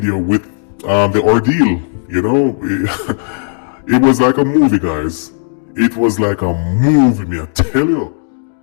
with the ordeal. It was like a movie, guys. It was like a movie, me I tell you.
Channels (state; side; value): silent; right; digital silence